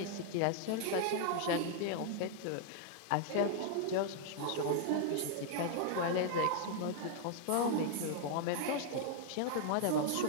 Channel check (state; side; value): different; both; correlation -0.01